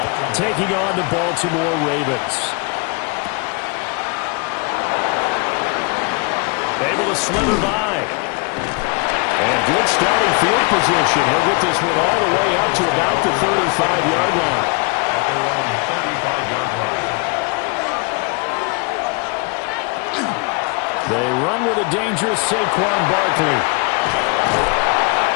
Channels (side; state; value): right; quieter; 30.9 dB